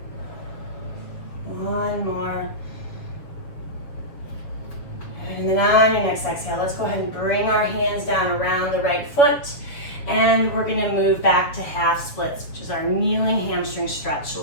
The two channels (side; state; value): right; late; 7.1 ms